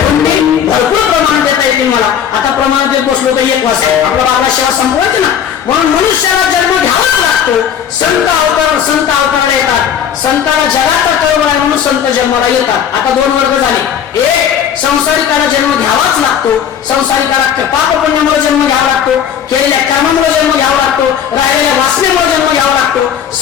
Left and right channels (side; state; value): right; quieter; 8.7 dB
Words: भरपूर प्रमाण देता येते मला. आता प्रमाण देत बसलो तर एक वाजता आपला बाबा सेवा संपवायची ना, म्हणून मनुष्याला जन्म घ्यावाच लागतो. संत अवताराला येतात. संताला जगाचा कळवळ आहे म्हणून संत जन्माला येतात. आता दोन वर्ग झाले. एक संसारिकाला जन्म घ्यावाच लागतो. संसारिकाला पाप पुण्यामुळे जन्म घ्यावा लागतो, केलेल्या कर्मामुळे जन्म घ्यावा लागतो, राहिलेल्या वासनेमुळे जन्म घ्यावा लागतो.